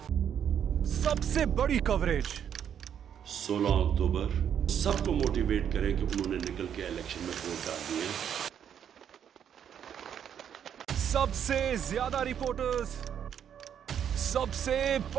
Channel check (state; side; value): quieter; left; 8.8 dB